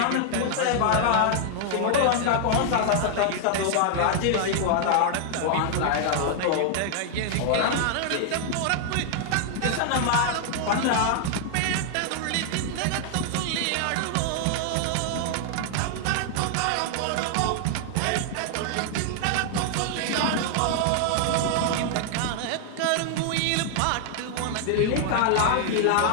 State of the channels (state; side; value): different; both; correlation 0.00